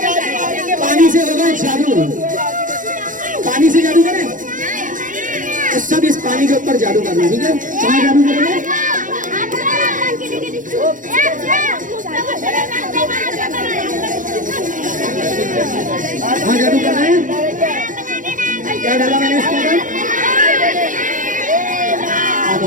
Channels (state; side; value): late; left; 0.38 ms